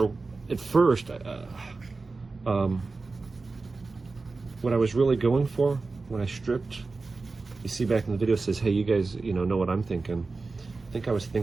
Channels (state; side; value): quieter; left; 3.9 dB